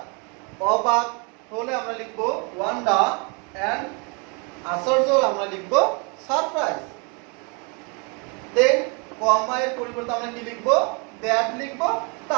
অবাক হলে আমরা লিখবো ওয়ান্ডার, এন্ড আশ্চর্য হলে আমরা লিখবো সারপ্রাইজ। দেন কমা এর পরিবর্তে আমরা কি লিখবো দ্যাট লিখবো,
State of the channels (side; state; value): left; quieter; 33.3 dB